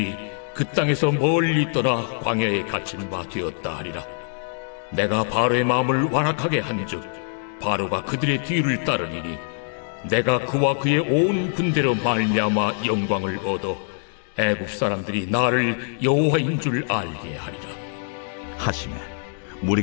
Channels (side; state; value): right; silent; digital silence